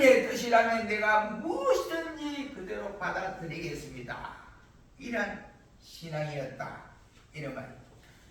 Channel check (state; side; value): identical; both; correlation 1.00